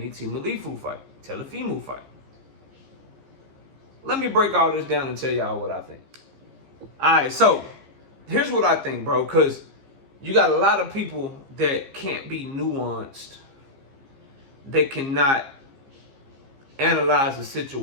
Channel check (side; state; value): left; late; 15 ms